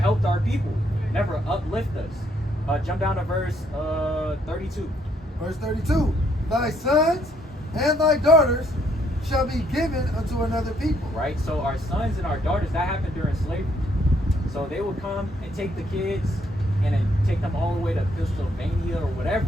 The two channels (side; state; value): both; normal; correlation 0.69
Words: our people, never uplift us. Jump down to verse 32. Verse 32. Thy sons and thy daughters shall be given unto another people. Right? So our sons and our daughters, that happened during slavery. So they would come and take the kids and then take them all the way to Pennsylvania or